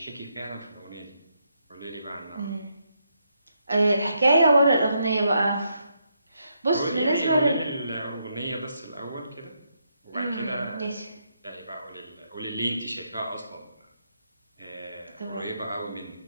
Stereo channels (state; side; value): inverted; both; correlation -0.79